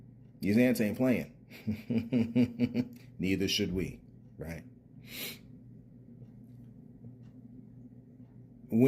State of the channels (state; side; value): identical; both; correlation 1.00